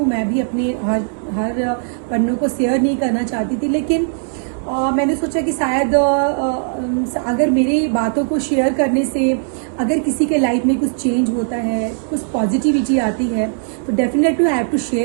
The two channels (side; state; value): left; silent; digital silence